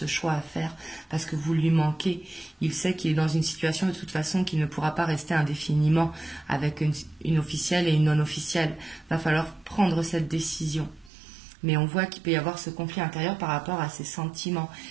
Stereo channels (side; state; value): left; drops out; at 11.1 s